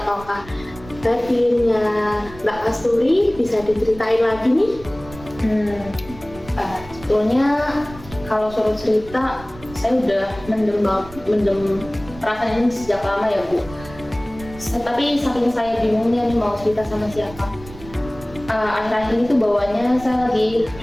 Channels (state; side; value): noise; right; rumble, 17 dB below the sound